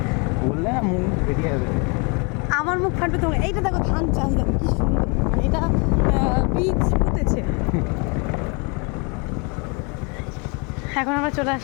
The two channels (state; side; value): quieter; right; 32.4 dB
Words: আমার মুখ ফাটবে তোমার। এইটা দেখো ধান চাষ, দেখো কি সুন্দর, মানে এটা বীজ পুঁতেছে। এখন আমরা চলে